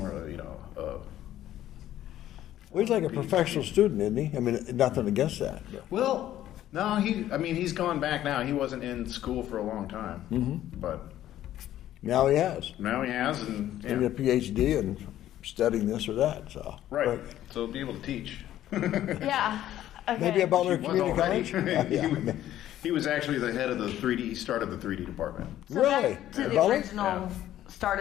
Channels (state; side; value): quieter; right; 12.7 dB